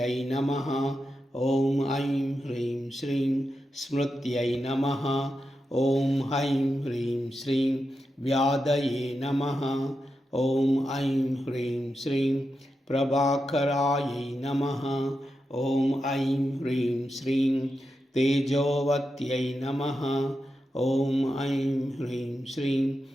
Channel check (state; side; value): normal; both; correlation 0.88